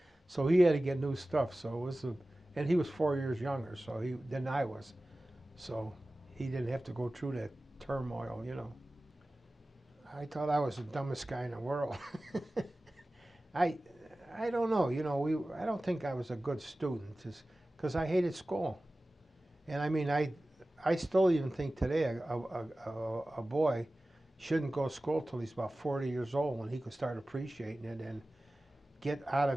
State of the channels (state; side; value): normal; both; correlation 0.96